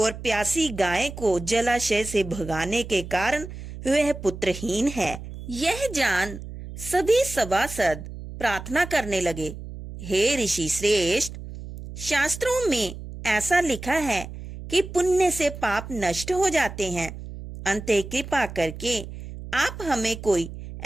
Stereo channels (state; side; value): noise; right; hum, 11 dB below the sound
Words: प्यासी गाय को जलाशय से भगाने के कारण वह पुत्रहीन है। यह जान सभी सभासद प्रार्थना करने लगे, हे ऋषि श्रेष्ठ, शास्त्रों में ऐसा लिखा है कि पुण्य से पाप नष्ट हो जाते हैं। अंततः कृपा करके आप हमें कोई